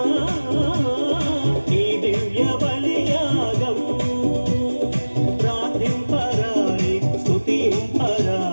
ఈ దివ్య బలియాగం ప్రార్థింపరారే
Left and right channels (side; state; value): both; inverted; correlation -1.00